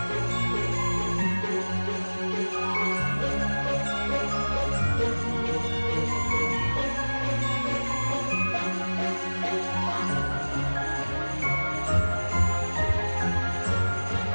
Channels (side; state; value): both; inverted; correlation -1.00